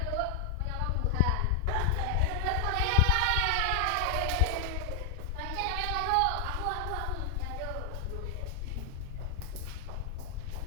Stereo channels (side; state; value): both; different; correlation 0.00